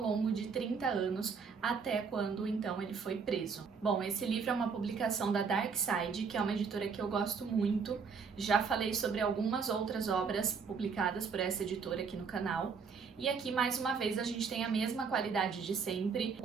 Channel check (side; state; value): left; quieter; 5.6 dB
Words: de 30 anos, até quando então ele foi preso. Bom, esse livro é uma publicação da Dark Side, que é uma editora que eu gosto muito. Já falei sobre algumas outras obras publicadas por essa editora aqui no canal. E aqui, mais uma vez, a gente tem a mesma qualidade de sempre,